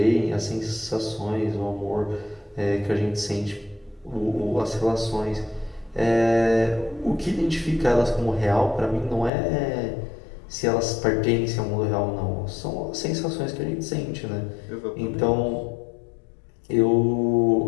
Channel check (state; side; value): drops out; right; at 9.3 s